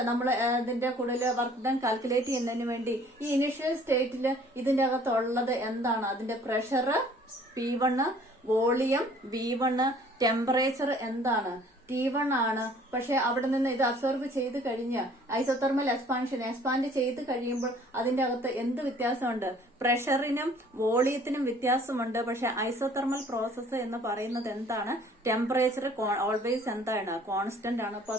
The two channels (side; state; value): both; normal; correlation 0.55